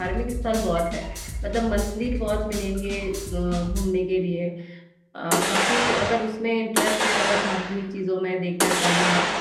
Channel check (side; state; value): both; identical; correlation 1.00